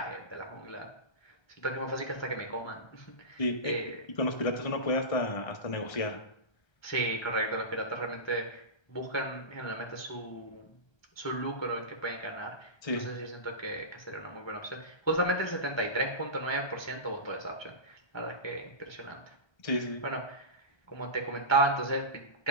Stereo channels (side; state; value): right; late; 1.3 ms